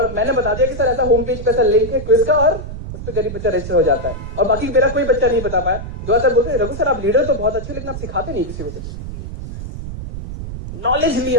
मैंने बता दिया कि सर ऐसा होम पेज पे ऐसा लिंक है क्विज का, और उस पर गरीब बच्चा रजिस्टर हो जाता है, और बाकी मेरा कोई बच्चा नहीं बता पाया। दुआ सर बोलते रघु सर आप लीडर तो बहुत अच्छे, लेकिन आप सिखाते नहीं किसी को कुछ। नॉलेज ली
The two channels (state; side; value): noise; right; rumble, 9 dB below the sound